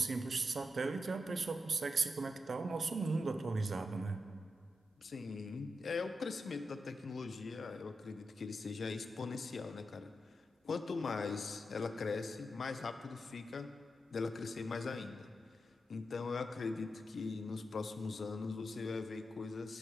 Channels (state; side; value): normal; both; correlation 0.87